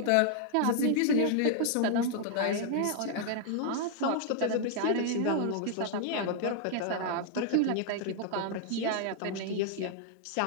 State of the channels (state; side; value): different; both; correlation 0.00